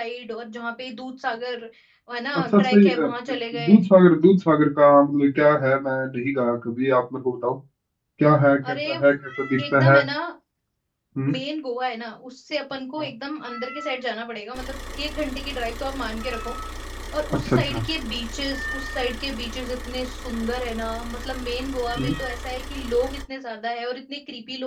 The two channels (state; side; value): identical; both; correlation 1.00